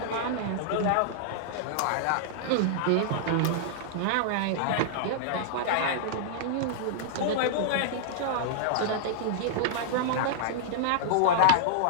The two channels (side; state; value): both; different; correlation -0.01